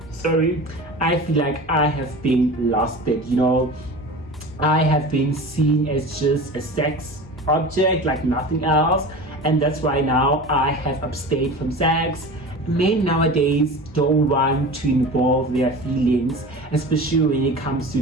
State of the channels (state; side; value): normal; both; correlation 0.34